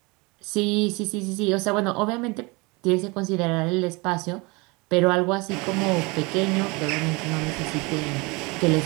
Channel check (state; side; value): quieter; left; 26.5 dB